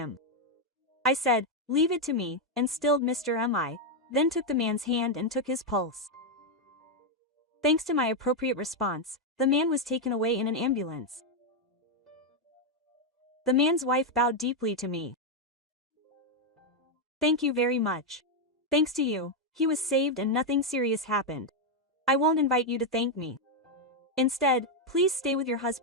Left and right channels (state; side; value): normal; both; correlation 0.02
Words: I said, "Leave it to me," and stilled Mr. Mi, then took the man's hand and took his pulse. Thanks to my appropriate response, the man was taken away in an ambulance. The man's wife bowed deeply to me. "Thank you very much. Thanks to you, he was saved and nothing serious happened. I won't invite you to thank me. Instead, please stay with your